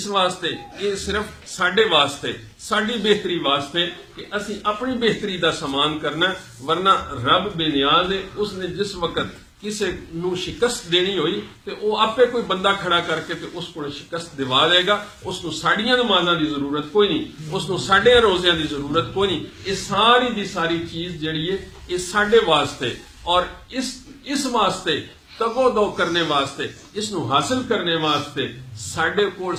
واسطے یہ صرف ساڈے واسطے ساڈی بہتری واسطے کہ اسی اپنی بہتری دا سامان کرنا. ورنہ رب بے نیاز ہے. اس نے جس وقت کسی نو شکست دینی ہوئی تے او آپے کوئی بندہ کھڑا کر کے تے اس کو شکست دوا دے گا. اس نو ساڑیاں نمازاں دی ضرورت کوئی نہیں. اس نو ساڑے روزیاں دی ضرورت کوئی نہیں. یہ ساری دی ساری چیز جڑی ہے یہ ساڈے واسطے اور اس واسطے تگو دو کرنے واسطے اس نو حاصل کرنے واسطے ساڈے کول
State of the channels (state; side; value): identical; both; correlation 1.00